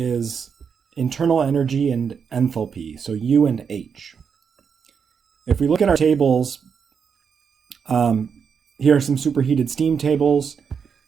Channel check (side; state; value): left; quieter; 6.6 dB